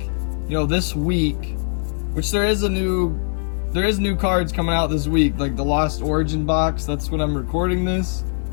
you know, this week, which there is new cards coming out this week, like the Lost Origin box, that's when I'm recording this.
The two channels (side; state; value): right; silent; digital silence